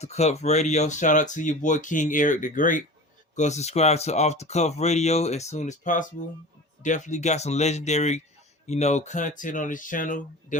Cuff Radio. Shout out to your boy King Eric the Great. Go subscribe to Off the Cuff Radio as soon as possible. Definitely got some legendary, content on his channel.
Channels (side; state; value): both; normal; correlation 0.35